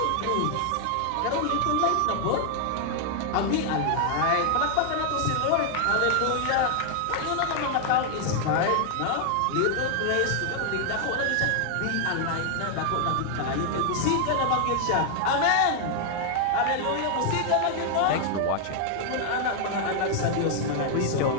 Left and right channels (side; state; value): both; different; correlation 0.00